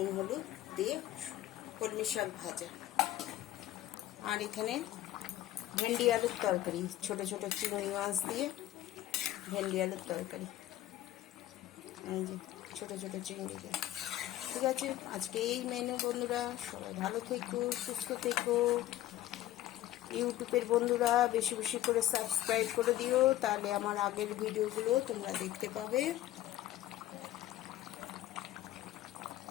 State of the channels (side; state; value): right; quieter; 14.2 dB